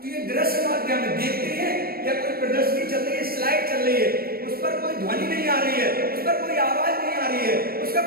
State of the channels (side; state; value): left; late; 0.44 ms